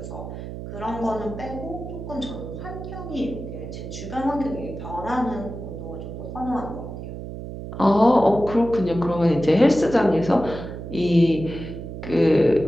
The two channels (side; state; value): right; noise; hum, 9 dB below the sound